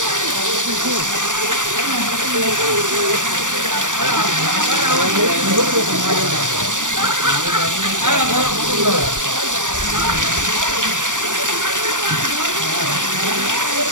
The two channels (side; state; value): left; late; 0.87 ms